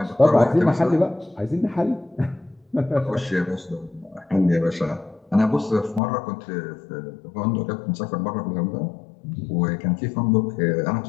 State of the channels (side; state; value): right; drops out; at 6.0 s